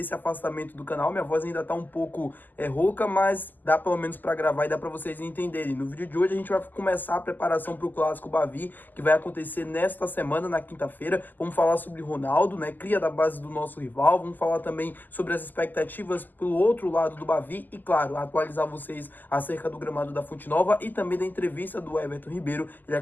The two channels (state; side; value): late; right; 0.086 ms